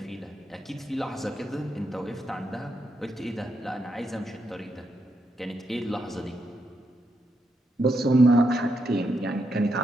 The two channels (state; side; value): normal; both; correlation 0.81